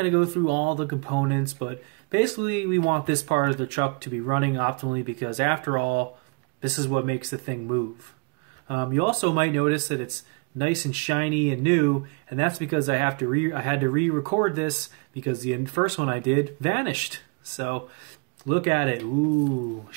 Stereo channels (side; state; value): left; quieter; 33.9 dB